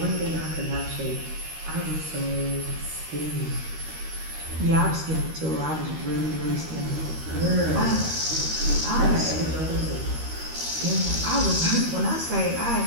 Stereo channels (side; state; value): left; late; 13 ms